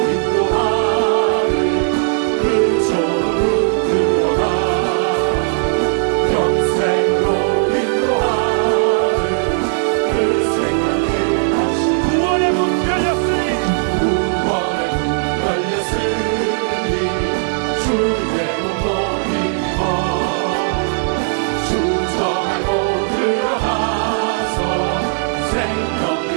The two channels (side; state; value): left; silent; digital silence